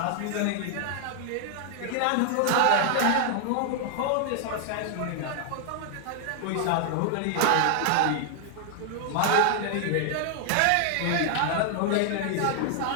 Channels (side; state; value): both; different; correlation 0.00